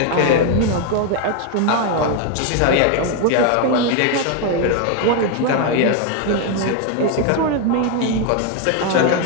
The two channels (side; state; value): both; different; correlation 0.01